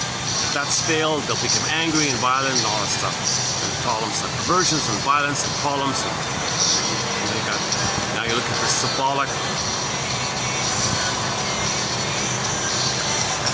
If that's failed, they'll become angry and violent and all that stuff. And problems like perversions and violence and problems. And now you're looking for symbolic.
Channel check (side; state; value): both; identical; correlation 1.00